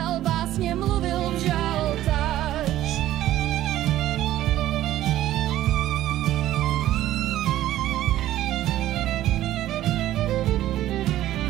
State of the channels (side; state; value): left; quieter; 13.8 dB